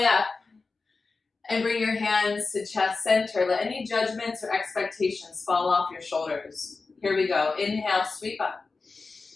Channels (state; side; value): quieter; right; 4.1 dB